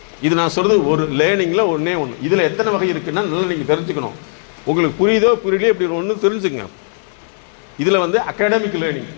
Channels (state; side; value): silent; right; 58 dB below the other